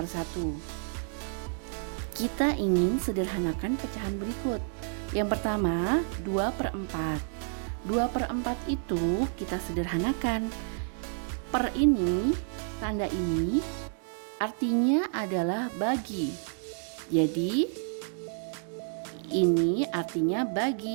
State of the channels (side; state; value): left; silent; 58 dB below the other